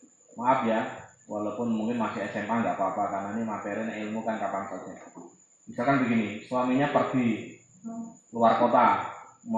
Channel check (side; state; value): both; identical; correlation 1.00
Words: maaf ya, walaupun mungkin masih SMA nggak apa-apa, karena ini materi ilmu kan kapan saja. Misalkan begini, suaminya pergi luar kota,